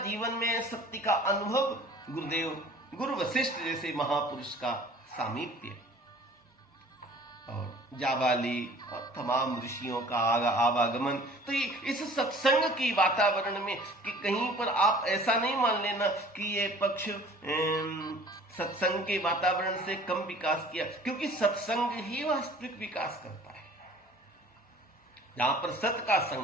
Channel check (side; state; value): both; normal; correlation 0.49